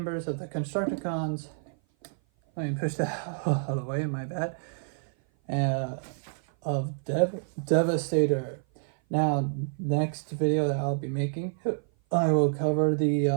of the Constructicons. Let me push that out of the way, my bad. Of Devastator. Now, next video that I'll be making, I will cover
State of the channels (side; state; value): left; silent; 56 dB below the other